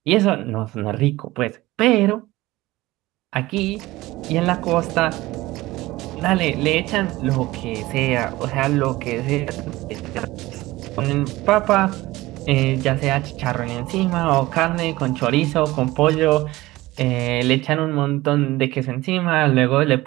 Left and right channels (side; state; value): left; quieter; 18.6 dB